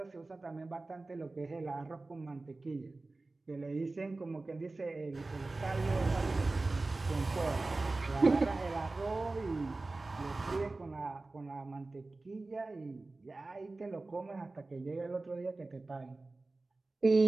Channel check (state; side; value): quieter; left; 3.3 dB